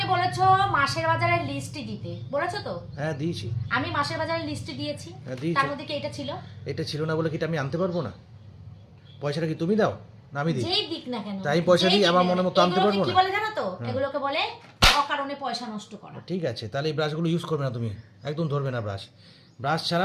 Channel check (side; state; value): both; identical; correlation 1.00